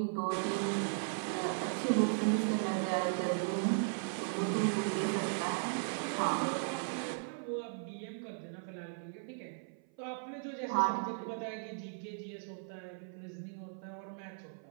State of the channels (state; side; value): silent; left; 53 dB below the other